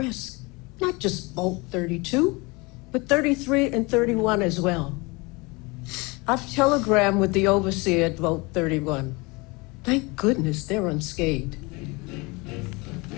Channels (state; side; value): quieter; right; 26.1 dB